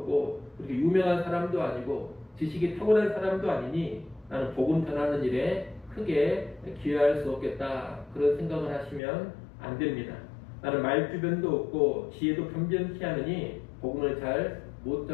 그렇게 유명한 사람도 아니고 지식이 탁월한 사람도 아니니 나는 복음 전하는 일에 크게 기여할 수 없겠다, 그런 생각을 하시면 안 됩니다. 나는 말주변도 없고 지혜도 변변치 않으니 복음을 잘 못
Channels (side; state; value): right; drops out; at 9.0 s